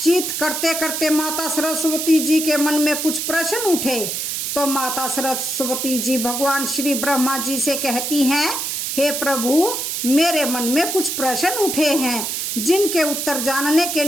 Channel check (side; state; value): right; noise; hiss, 2 dB below the sound